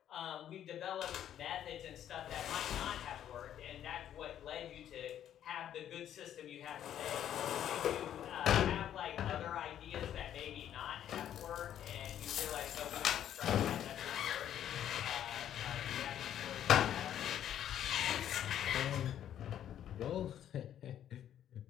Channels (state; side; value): quieter; right; 10.6 dB